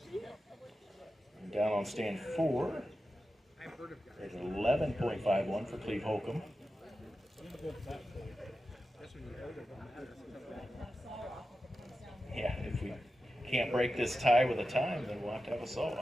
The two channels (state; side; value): normal; both; correlation 0.92